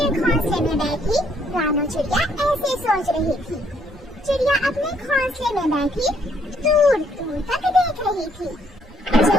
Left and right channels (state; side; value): normal; both; correlation 0.68